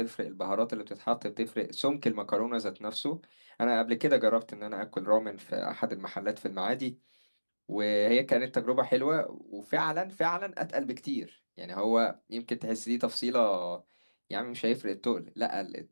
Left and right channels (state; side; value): inverted; both; correlation -1.00